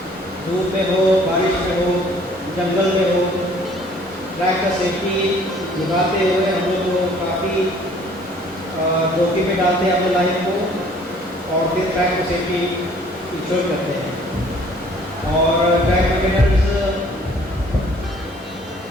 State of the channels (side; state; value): both; normal; correlation 0.56